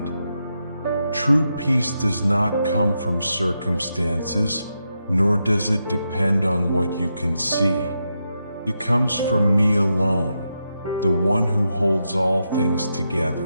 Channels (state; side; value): inverted; both; correlation -0.85